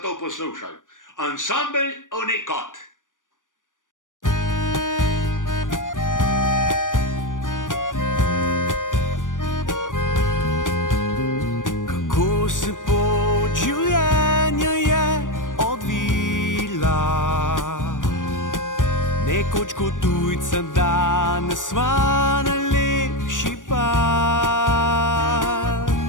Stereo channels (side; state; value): right; late; 0.88 ms